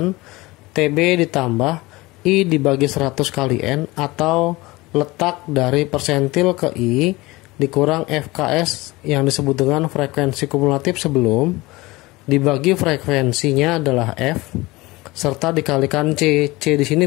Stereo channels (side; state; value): right; quieter; 21.3 dB